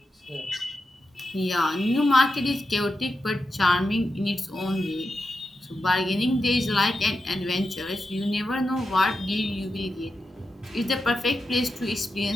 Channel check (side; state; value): both; normal; correlation 0.89